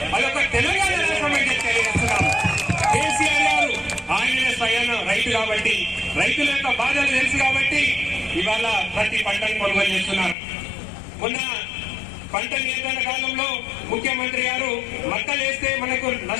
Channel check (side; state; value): right; drops out; at 10.4 s